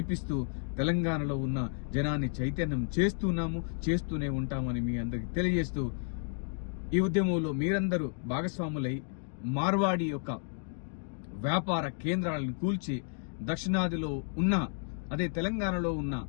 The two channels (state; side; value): silent; right; 56 dB below the other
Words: తెలంగాణలో ఉన్న జనాన్ని చైతన్యం చేస్తూనే ఉంటామని మీ అందరికి తెలియజేస్తూ, ఈ ఉద్యమంలో మీరందరూ భాగస్వాములై మార్వాడి యొక్క వ్యాపార కేంద్రాలను కూల్చి దక్షిణాదిలో ఉన్న తెలంగాణలో ఉన్న